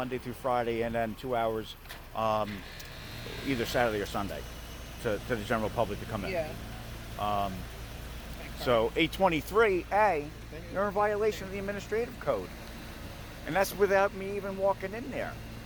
through Friday, and then 2 hours either Saturday or Sunday to the general public to come in. Yeah. So 823A, you're in violation of the administrative code. And that's without me even walking in there.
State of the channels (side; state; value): both; identical; correlation 1.00